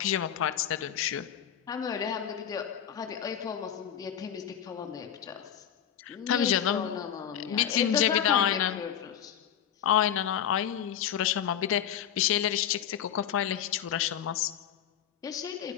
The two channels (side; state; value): right; quieter; 9.6 dB